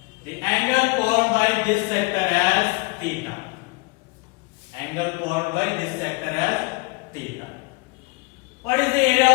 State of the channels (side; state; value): right; quieter; 27.4 dB